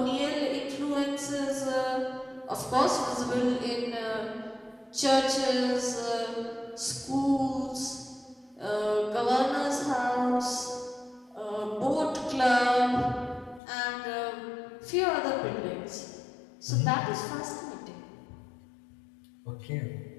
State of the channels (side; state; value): right; drops out; at 13.6 s